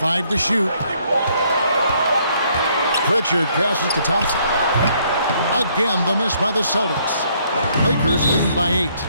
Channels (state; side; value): inverted; both; correlation -0.67